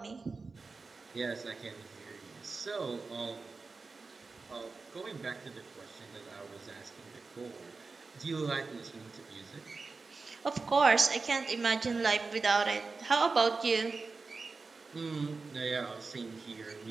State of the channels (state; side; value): quieter; left; 4.1 dB